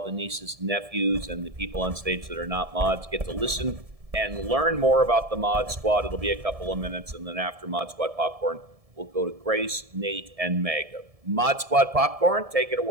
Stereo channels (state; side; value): late; left; 1.7 ms